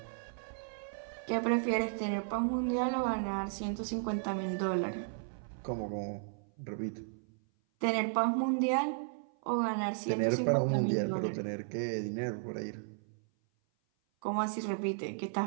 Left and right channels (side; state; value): left; silent; 55 dB below the other